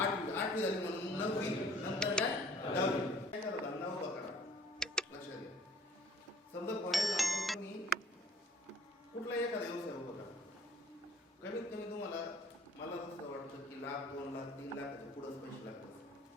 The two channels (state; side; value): normal; both; correlation 0.54